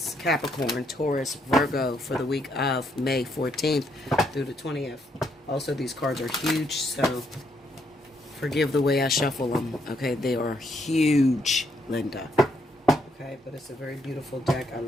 Capricorn, Taurus, Virgo for the week of May 14th through the 20th. Also, these cards are huge, so forgive the way I shuffle them. Okay, they are huge, Linda. Okay, but it's a very beautiful deck. I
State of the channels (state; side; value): normal; both; correlation 0.74